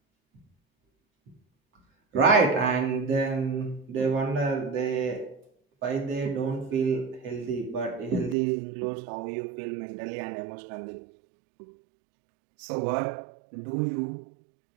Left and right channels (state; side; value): drops out; left; at 8.3 s